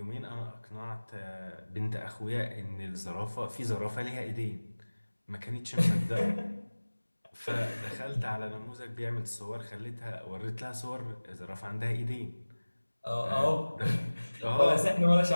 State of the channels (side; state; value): both; inverted; correlation -1.00